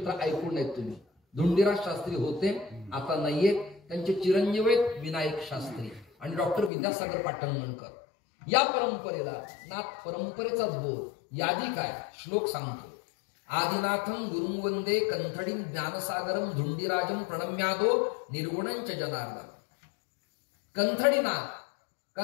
ऐकून आहेत तुम्ही. धुंडीराज शास्त्री होते, आता नाहीये. त्यांचे चिरंजीव आहेत विनायक शास्त्री आणि डॉक्टर विद्यासागर पाटणगणकर. या परंपरेला नाथ परंपरेचाच बोध. यादी काय, श्लोक सांगतो. आदिनाथम गुरुं वंदे कंथडीं ज्ञानसागरम धुंडीराजम प्रणम्यादो निर्गुणंच जनार्दन. कंथडीनाथ,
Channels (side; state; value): right; drops out; at 6.7 s